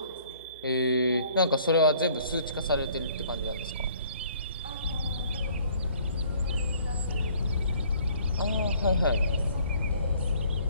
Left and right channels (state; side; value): inverted; both; correlation -0.58